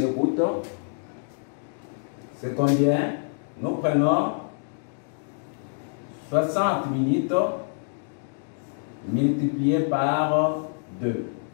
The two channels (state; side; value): silent; right; digital silence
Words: C'est combien? Nous prenons 60 minutes multiplié par 2.